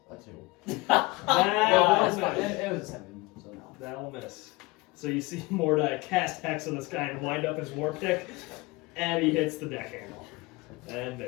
That's two. That will miss. It was a 7, so no. That'll miss. So you see Mordai cast hex on this guy and wind up his war pick, and he hits the deck handle. And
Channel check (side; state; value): right; quieter; 22.7 dB